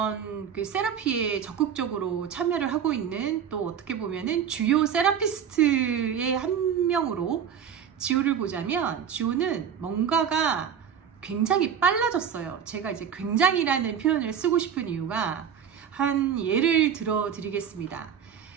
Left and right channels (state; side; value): quieter; left; 8.1 dB